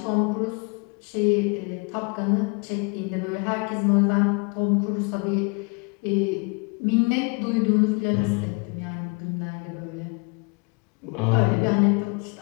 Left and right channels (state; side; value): quieter; right; 33.3 dB